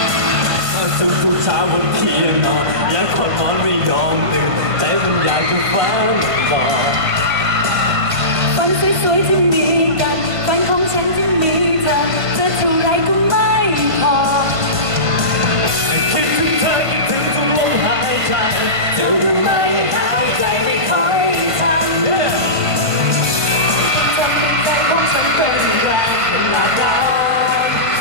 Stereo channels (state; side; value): late; left; 1.5 ms